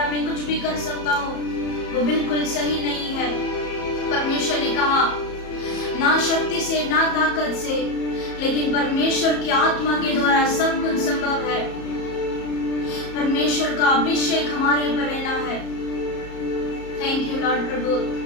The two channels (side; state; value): right; late; 34 ms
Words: मैं कुछ भी कर सकता हूँ, वो बिल्कुल सही नहीं है। परमेश्वर ने कहा ना शक्ति से ना ताकत से, लेकिन परमेश्वर की आत्मा के द्वारा सब कुछ संभव है। परमेश्वर का अभिषेक हमारे ऊपर रहना है। थैंक यू लॉर्ड